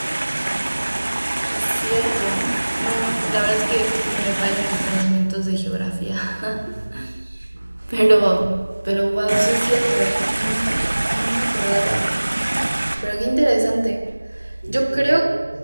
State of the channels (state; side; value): inverted; both; correlation -1.00